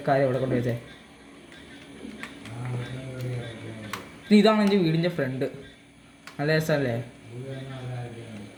ആരും ഇവിടെ കൊണ്ട് വെച്ചേ. പിന്നെ ഇതാണ് എൻ്റെ വീടിൻ്റെ ഫ്രണ്ട്. നല്ല രസമല്ലേ?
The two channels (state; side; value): identical; both; correlation 1.00